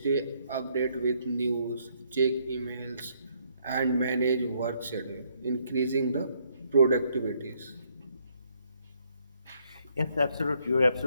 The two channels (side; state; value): both; inverted; correlation -0.70